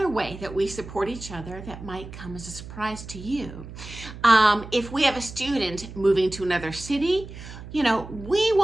way that we support each other that might come as a surprise to you. If we have a student moving to another city, we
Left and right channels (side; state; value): right; noise; hum, 13 dB below the sound